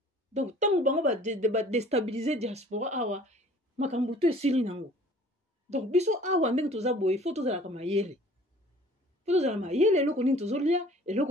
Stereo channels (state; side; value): normal; both; correlation 0.50